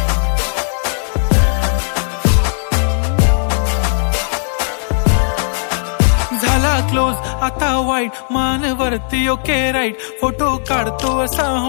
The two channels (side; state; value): right; silent; 69 dB below the other